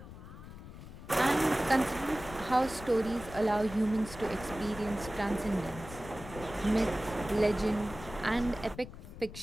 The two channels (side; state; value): left; noise; rumble, 14 dB below the sound